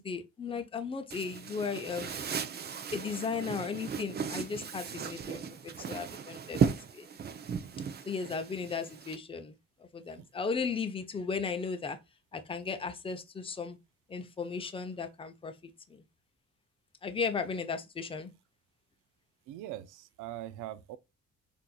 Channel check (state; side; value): normal; both; correlation 0.40